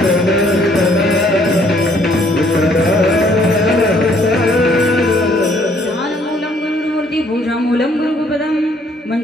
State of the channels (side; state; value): both; normal; correlation 0.64